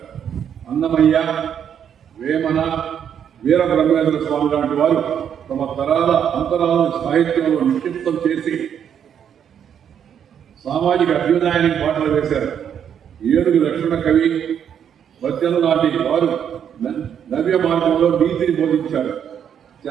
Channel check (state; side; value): quieter; left; 8.6 dB